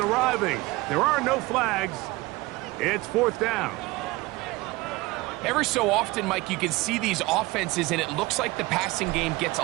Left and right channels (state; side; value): quieter; left; 21.4 dB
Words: There are no flags. It's 4th down. Every so often, Mike, you can see these offenses, and it looks like the passing game gets